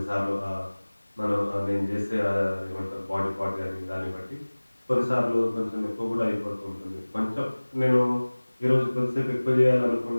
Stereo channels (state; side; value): inverted; both; correlation -1.00